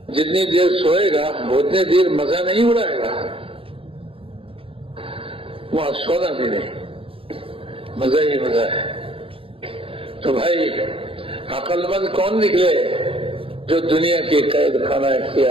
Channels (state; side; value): late; left; 0.27 ms